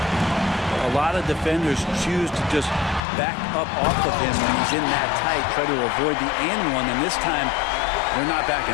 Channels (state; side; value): drops out; right; at 3.0 s